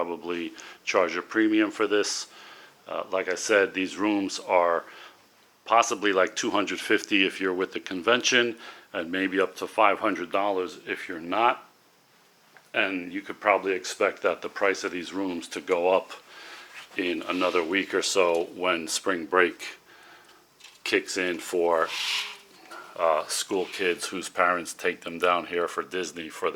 charge a premium for this. Like I said, these rooms are possibly like $250 if you're with the convention, and maybe up to $500 if you're not. And you could probably expect that the price of these rooms to go up in another week or so when spring break kicks in for school kids whose parents take them down here for Disney for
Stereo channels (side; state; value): both; identical; correlation 1.00